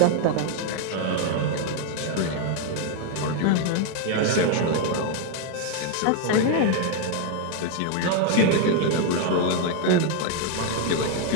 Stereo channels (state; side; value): different; both; correlation 0.00